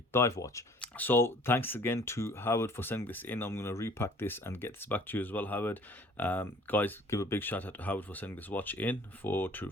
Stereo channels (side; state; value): both; normal; correlation 0.52